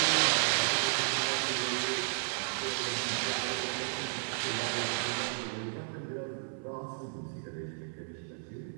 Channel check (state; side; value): silent; left; 56 dB below the other